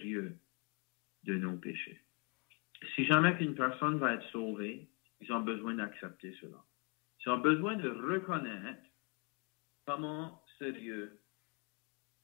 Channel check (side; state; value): right; quieter; 34.1 dB